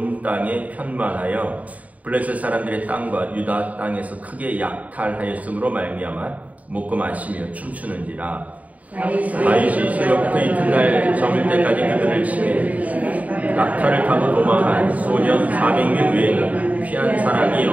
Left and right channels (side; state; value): left; late; 0.071 ms